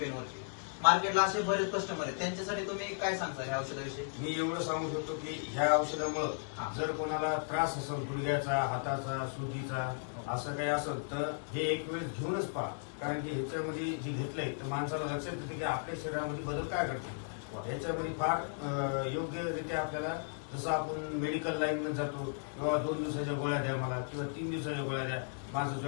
वरती. मार्केटला असे बरेच कस्टमर आहेत, त्यांच्यासाठी तुम्ही काय सांगता ह्या औषधाविषयी? मी एवढं सांगू शकतो की ह्या औषधामुळे जर कोणाला त्रास असेल गुडघ्याचा, हाताचा, सुजीचा असं काही असेल तर हे एक वेळेस घेऊनच पहा. कारण की ह्याच्यामध्ये जे घेतलंय तर माणसाला लक्षात येते की आपल्या शरीरामध्ये बदल काय करतो. ह्याच्यामध्ये फार योग्यरित्या आपल्याला जसं आपण मेडिकल लाईन मध्ये जातो किंवा 2 दिवसाच्या गोळ्या द्या मला किंवा 3 दिवसाच्या गोळ्या द्या, माझं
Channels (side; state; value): right; silent; digital silence